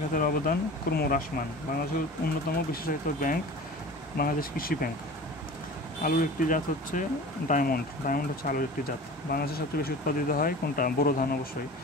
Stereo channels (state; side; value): normal; both; correlation 0.38